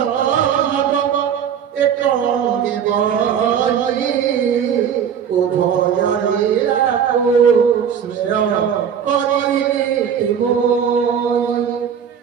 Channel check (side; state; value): left; quieter; 8.1 dB